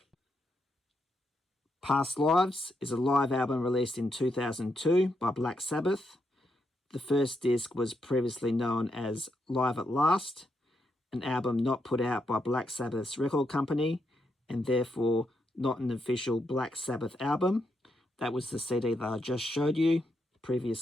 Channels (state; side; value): normal; both; correlation 0.81